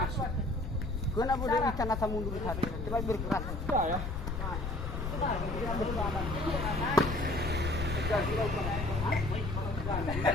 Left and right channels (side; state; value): left; noise; rumble, 4 dB below the sound